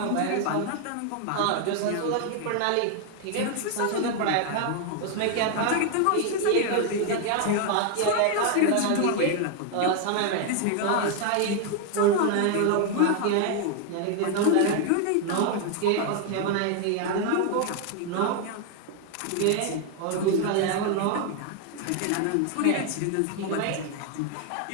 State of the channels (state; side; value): different; both; correlation 0.01